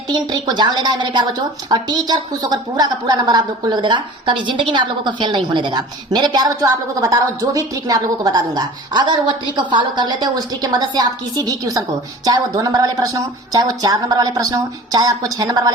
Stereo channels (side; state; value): both; normal; correlation 0.41